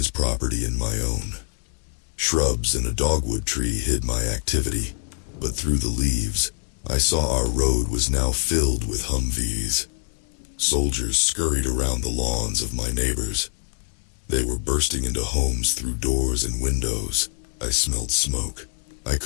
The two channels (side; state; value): right; silent; digital silence